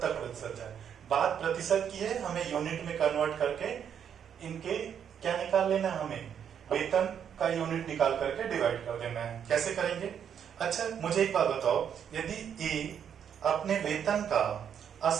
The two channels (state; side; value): quieter; left; 8.4 dB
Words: है। बात प्रतिशत की है, हमें यूनिट में कन्वर्ट करके इनके क्या निकाल लेना है, हमें वेतन का यूनिट निकाल करके डिवाइड कर देना है। कैसे करेंगे, अच्छा मुझे एक बात बताओ, यदि ए अपने वेतन का